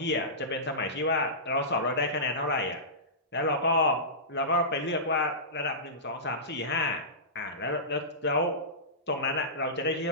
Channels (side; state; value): both; normal; correlation -0.20